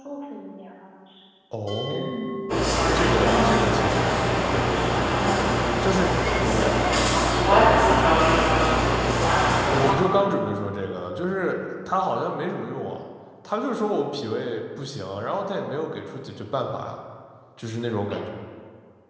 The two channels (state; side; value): identical; both; correlation 1.00